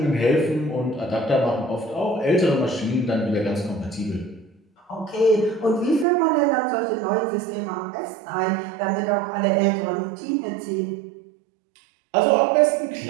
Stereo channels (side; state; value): left; drops out; at 6.1 s